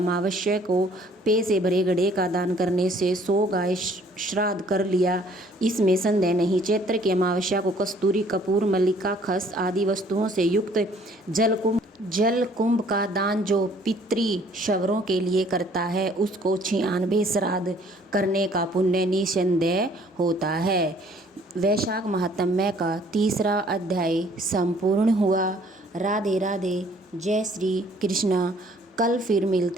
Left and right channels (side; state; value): both; normal; correlation 0.59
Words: को पे से भरे घड़े का दान करने से 100 गाय श्राद्ध कर लिया, इसमें संदेह नहीं। चैत्र की अमावस्या को कस्तूरी, कपूर, मल्लिका, खस आदि वस्तुओं से युक्त जल कुंभ का दान जो पितृ शवरों के लिए करता है उसको 96 श्राद्ध करने का पुण्य निसंदेह होता है। वैशाख महात्म्य का 3रा अध्याय संपूर्ण हुआ। राधे राधे, जय श्री कृष्णा। कल फिर